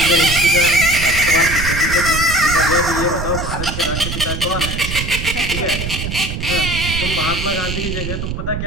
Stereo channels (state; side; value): noise; right; rumble, 5 dB below the sound